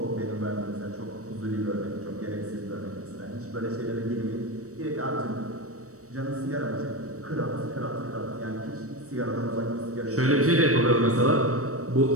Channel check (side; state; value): left; late; 0.65 ms